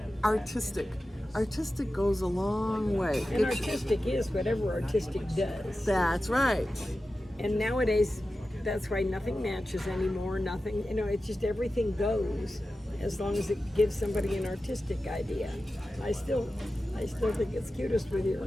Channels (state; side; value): normal; both; correlation 0.93